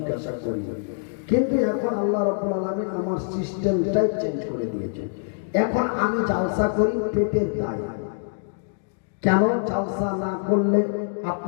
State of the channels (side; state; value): right; silent; digital silence